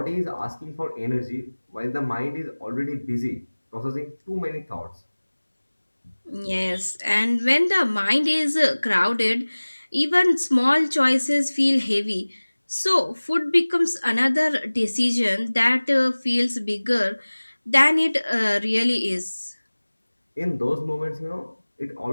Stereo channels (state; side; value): inverted; both; correlation -1.00